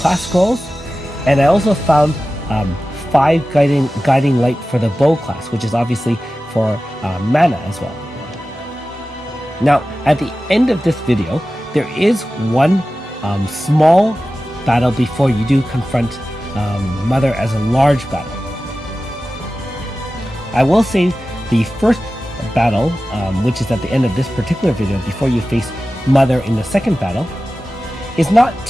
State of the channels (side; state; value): both; normal; correlation 0.95